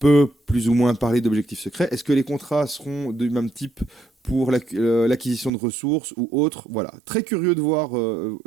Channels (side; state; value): left; drops out; at 5.5 s